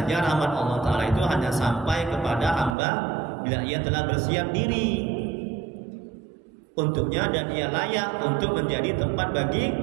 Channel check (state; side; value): drops out; left; at 2.8 s